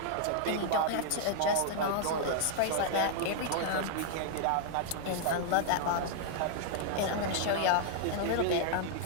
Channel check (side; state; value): both; different; correlation -0.01